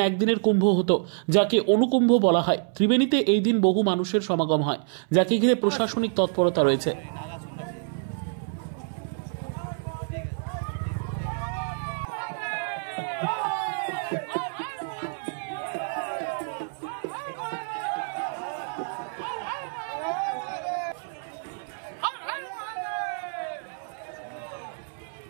একদিনের কুম্ভ হতো, যাকে অনুকুম্ভ বলা হয়। ত্রিবেণীতে এই দিন বহু মানুষের সমাগম হয়, যাকে ঘিরে প্রশাসনিক তৎপরতা রয়েছে।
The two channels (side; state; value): left; silent; 60 dB below the other